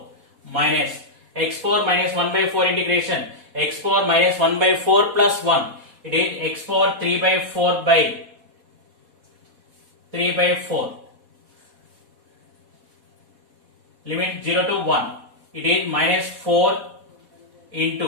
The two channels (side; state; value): left; late; 4.1 ms